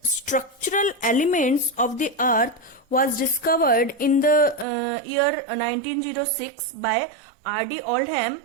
structural elements of the earth was discovered in the year 1906 by R.D. Oldham?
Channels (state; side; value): drops out; left; at 4.7 s